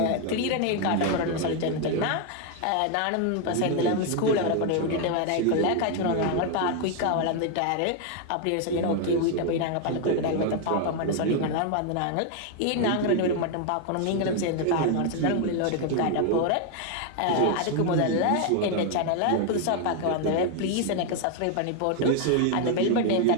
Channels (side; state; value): both; different; correlation 0.01